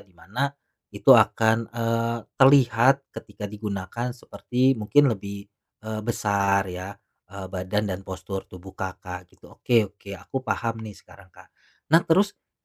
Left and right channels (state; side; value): identical; both; correlation 1.00